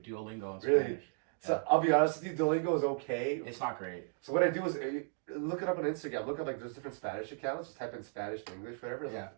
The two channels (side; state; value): left; silent; 54 dB below the other